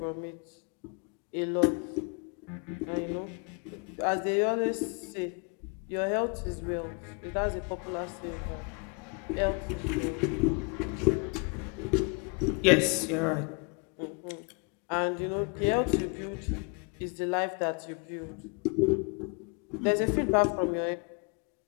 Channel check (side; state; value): right; quieter; 33.8 dB